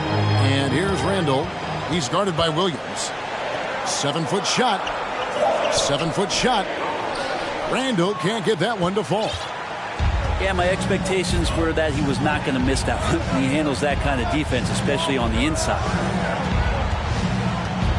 And here's Randall. He's guarded by Williams. 7-foot shot. 7-foot shot. Randall can't get that one to fall. Yeah, my expectations were that he was not going to miss that one. He handles that kind of defense, especially on the inside.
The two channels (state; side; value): identical; both; correlation 1.00